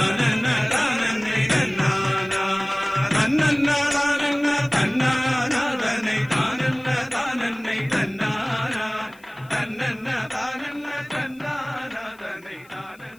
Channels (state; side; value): noise; left; hiss, 29 dB below the sound